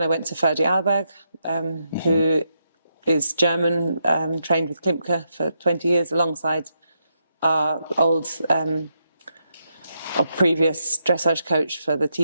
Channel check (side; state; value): both; inverted; correlation -0.82